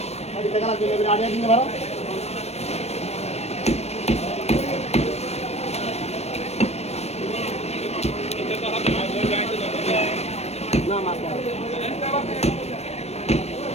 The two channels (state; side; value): late; right; 0.31 ms